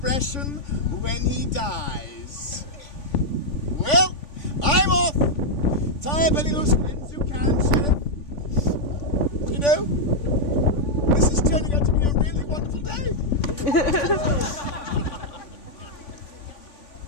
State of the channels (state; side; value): late; right; 3.5 ms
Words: when he dies. Well, I'm off. Tie up any loose ends you can, Sheriff. You know, this is turning out to be a really wonderful day.